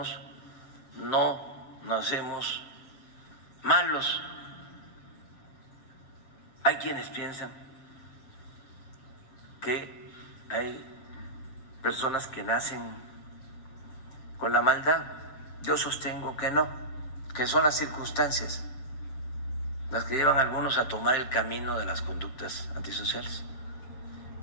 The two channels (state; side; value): late; right; 7.4 ms